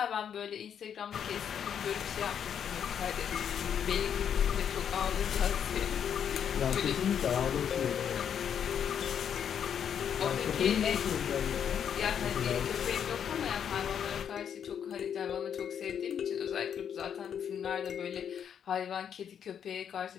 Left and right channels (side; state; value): right; quieter; 8.4 dB